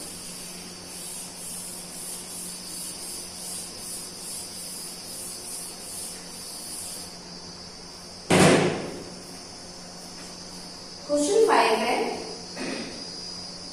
क्वेश्चन 5 है,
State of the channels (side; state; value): both; identical; correlation 1.00